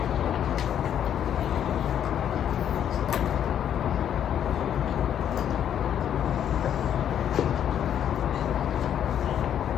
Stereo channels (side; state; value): right; quieter; 9.6 dB